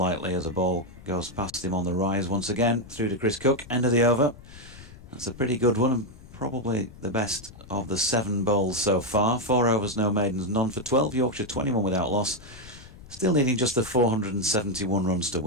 as a ball goes past him on the rise once again, through to Chris Cook. End of the over. That's a pretty good one, and probably the best of the 7 bowls so far. 4 overs, no maidens, none for 12. Yorkshire 21 without loss. Still needing just the 471 runs to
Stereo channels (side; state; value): left; noise; rumble, 19 dB below the sound